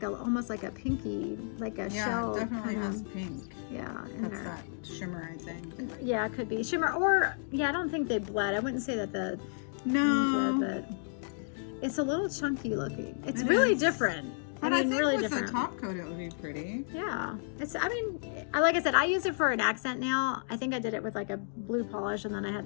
almost like a pinky, like a shell. Yeah, it definitely kind has of, pink. Yeah. That's that shimmer, I think. Yeah, it could be. Shimmer, or, yeah, I don't think they bled. I wouldn't say that the... No. But it's a little chunky looking. It's really different. But I think really with different. the top coat, it would be pretty. Yeah. Like I said, I use it for an accent nail. I think I did it with like a blue polish, and then I had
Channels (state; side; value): silent; right; digital silence